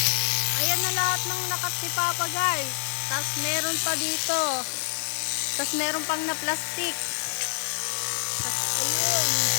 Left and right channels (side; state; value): right; silent; digital silence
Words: Ayan na lahat ng nakat ni Papa guys. Tapos meron pa dito. Tapos meron pang na plastic. Tapos ayun.